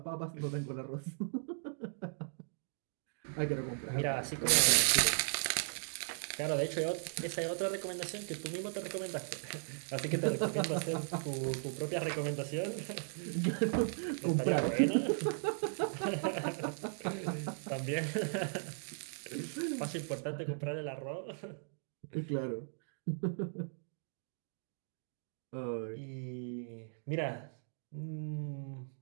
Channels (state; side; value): silent; left; digital silence